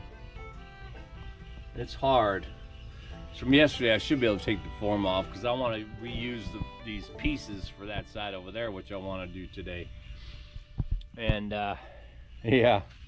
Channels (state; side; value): identical; both; correlation 1.00